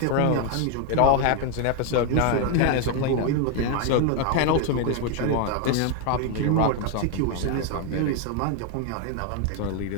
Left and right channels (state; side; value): different; both; correlation 0.01